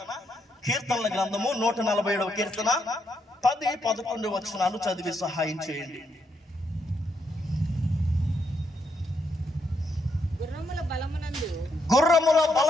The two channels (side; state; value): both; normal; correlation 0.78